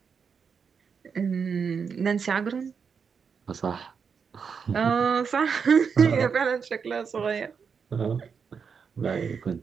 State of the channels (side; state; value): left; quieter; 6.2 dB